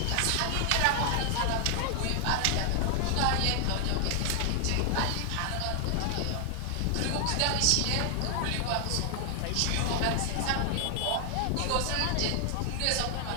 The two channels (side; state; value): both; different; correlation 0.00